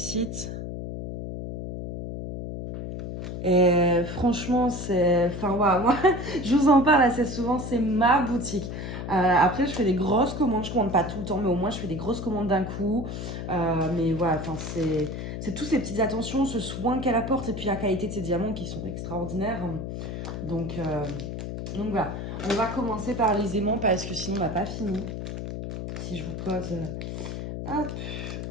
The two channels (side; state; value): left; noise; hum, 6 dB below the sound